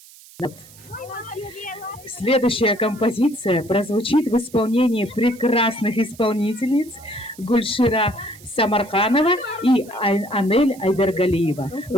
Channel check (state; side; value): noise; right; hiss, 22 dB below the sound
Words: Следующая композиция прозвучит в исполнении прекрасных исполнительниц Гульшира Самарханова и Анель Айдаргалиева,